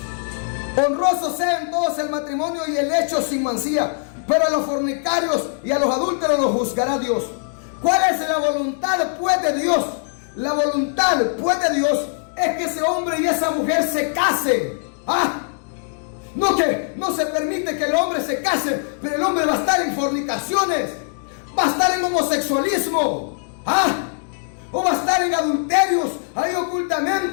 honrosos sean todos el matrimonio y el hecho sin mancilla, pero a los fornicarios y a los adúlteros los juzgará Dios. ¿Cuál es la voluntad pues de Dios? La voluntad pues de Dios es que ese hombre y esa mujer se casen. No se permite que el hombre se case, pero el hombre va a estar en fornicaciones, va a estar en homosexualismo, o va a estar en adulterios ahí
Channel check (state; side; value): silent; right; digital silence